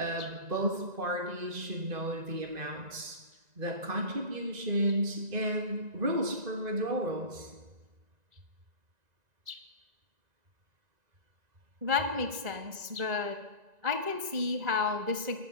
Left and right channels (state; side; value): late; left; 2.0 ms